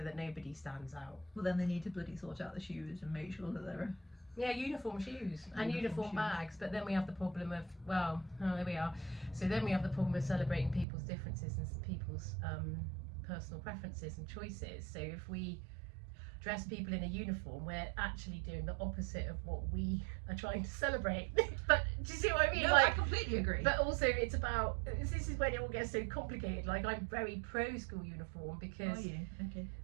that nobody stands out. Well, then they need to bloody sort out the shoes and make sure that they're Yeah, uniform shoes and uniform shoes. bags, but then we have the problem of, well, oh, there we are. So then we have the problem of celebrating people's differences and people's personal preferences and choices. So if we dress people in a uniform, we're actually doing the opposite of what we are trying to celebrate. But do you see what I mean? No, I completely agree. But also it's about, this is when it all gets so complicated. Like, I'm very pro school uniform because, Are you? Okay.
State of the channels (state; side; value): drops out; left; at 10.9 s